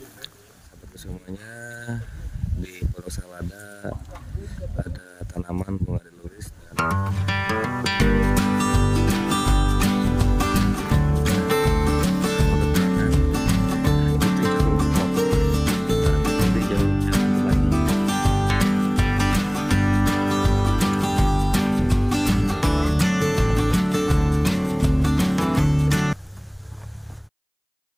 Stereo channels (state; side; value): identical; both; correlation 1.00